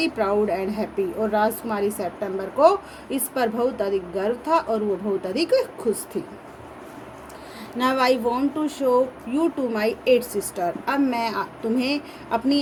proud and happy, और राजकुमारी सेप्टेम्बर को इस पर बहुत अधिक गर्व था और वो बहुत अधिक खुश थी। Now I want to show you to my 8 sister, अब मैं तुम्हें अपनी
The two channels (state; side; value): identical; both; correlation 1.00